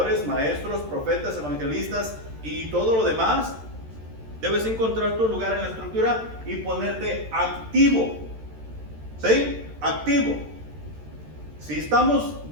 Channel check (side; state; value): left; late; 13 ms